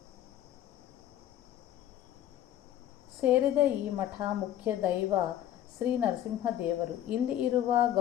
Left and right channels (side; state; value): right; quieter; 11.9 dB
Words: ಸೇರಿದ ಈ ಮಠ ಮುಖ್ಯ ದೈವ ಶ್ರೀ ನರಸಿಂಹದೇವರು. ಇಲ್ಲಿ ಇರುವ